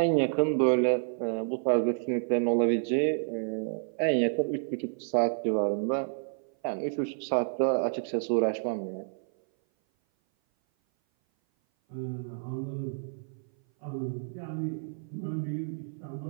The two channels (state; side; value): silent; left; 56 dB below the other